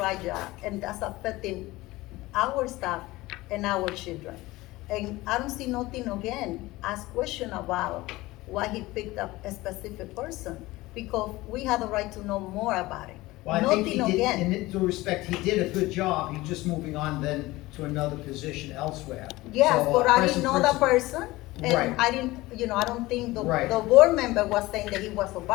right job, and that's affecting our staff and our children. And I don't see nothing again, ask question about why he picked up a specific person, because we have the right to know more about it. Well, I think Nothing he did, again. in due respect, he did a good job, he's just moving on then to another position elsewhere. Yes, So, but I present didn't know that principal- person, and Right. I didn't, I don't think the Right. board member was saying that he was a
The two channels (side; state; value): right; quieter; 19.4 dB